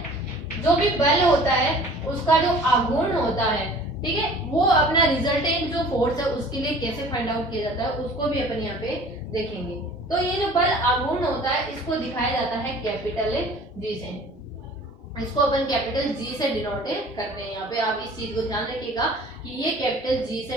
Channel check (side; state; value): both; normal; correlation 0.47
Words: जो भी बल होता है उसका जो आघूर्ण होता है, ठीक है, वो अपना रिजल्टेंट जो फोर्स है उसके लिए कैसे फाइंड आउट किया जाता है उसको भी अपन यहाँ पे देखेंगे। तो ये जो बल आघूर्ण होता है इसको दिखाया जाता है कैपिटल जी से। इसको अपन कैपिटल जी से डिनोट करते हैं। यहाँ पे आप इस चीज को ध्यान रखिएगा कि ये कैपिटल जी